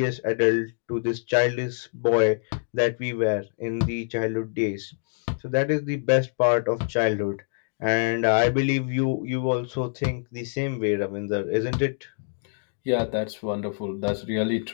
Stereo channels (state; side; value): silent; right; digital silence